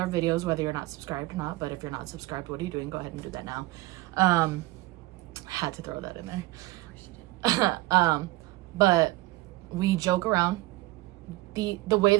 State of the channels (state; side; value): quieter; left; 19.7 dB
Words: videos, whether you're not subscribed or not, but if you're not subscribed, what are you doing? Go ahead and do that now. Had to throw that in there. But we joke around. The way